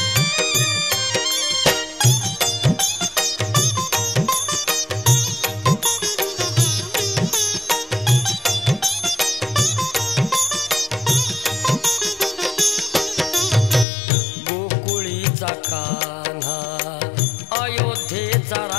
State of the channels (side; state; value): right; drops out; at 13.9 s